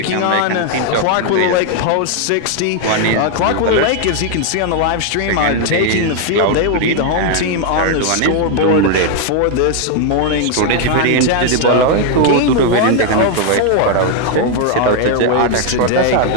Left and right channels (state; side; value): different; both; correlation 0.00